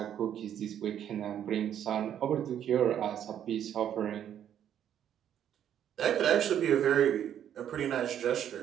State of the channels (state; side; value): quieter; left; 9.9 dB